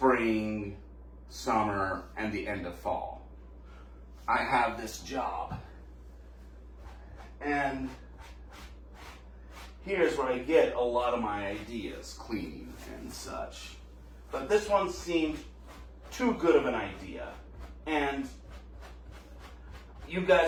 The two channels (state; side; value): identical; both; correlation 1.00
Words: summer, and the end of fall. I have this job. And here's where I get a lot of my ideas, cleaning and such. But this one seemed too good of an idea. And you